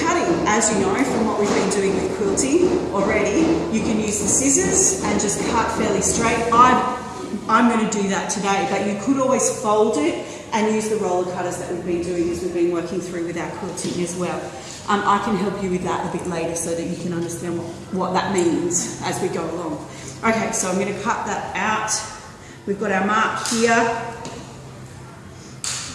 cutting, as you know from what we've been doing with quilting already. You can use the scissors and just cut fairly straight. I'm going to do that today, but you could always fold it and use the roller cutters that we've been doing as we've been working through with our quilting as well. I can help you with that a bit later so that you can understand what that means as we go along. Okay, so I'm going to cut that out. We've got our mark here.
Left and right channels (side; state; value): both; identical; correlation 1.00